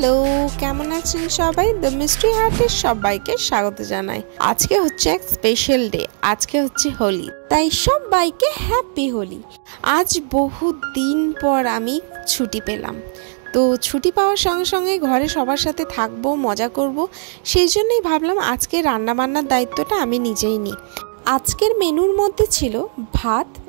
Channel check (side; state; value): left; silent; digital silence